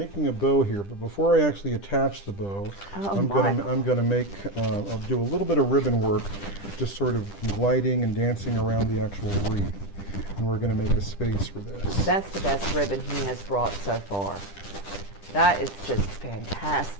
a bow here, but before I actually attach the bow, I'm gonna make I'll do a little bit of ribbon work, just sort of gliding and dancing around the actual wreath, and we're gonna make a space for this. That's the best ribbon he has brought so far. That is just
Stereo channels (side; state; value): right; late; 10 ms